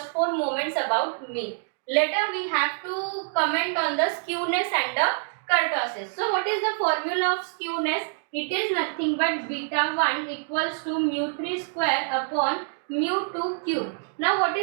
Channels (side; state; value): left; silent; digital silence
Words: 4 moments about mean. Later we have to comment on the skewness and the kurtosis. So what is the formula of skewness? It is nothing but beta 1 equals to mu3 square upon mu2 cube. Now what